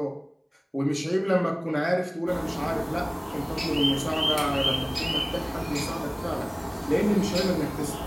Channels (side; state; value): both; identical; correlation 1.00